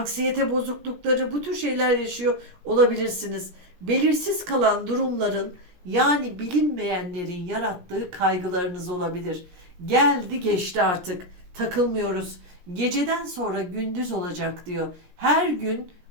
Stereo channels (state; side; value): late; left; 17 ms